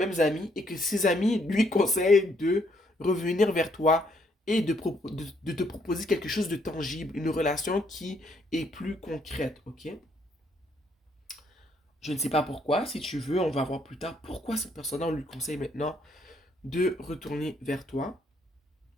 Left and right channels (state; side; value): normal; both; correlation 0.70